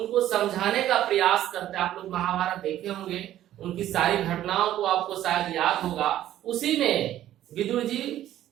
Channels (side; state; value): left; quieter; 12.7 dB